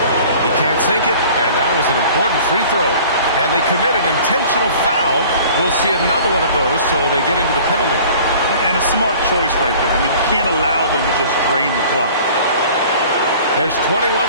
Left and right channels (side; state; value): both; inverted; correlation -0.47